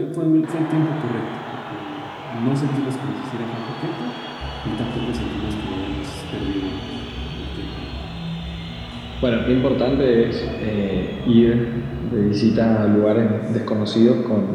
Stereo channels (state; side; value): identical; both; correlation 1.00